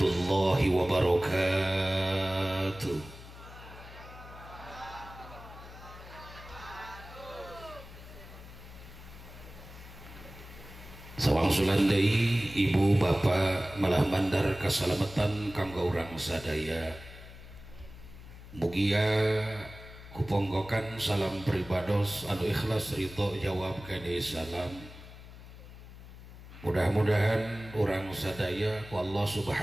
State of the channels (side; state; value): left; noise; hum, 16 dB below the sound